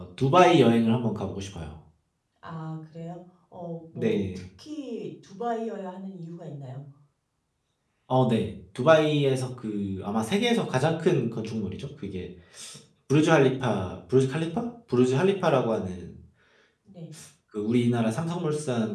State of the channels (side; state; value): both; identical; correlation 1.00